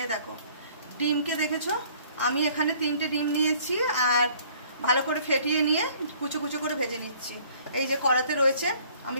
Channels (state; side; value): inverted; both; correlation -0.56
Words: এই দেখো ডিমকে দেখেছো, আমি এখানে 3টে ডিম নিয়েছি আর ভালো করে ফেটিয়ে নিয়ে কুচো কুচো করে ভেজে নিচ্ছি। এই যে কড়াতে রয়েছে,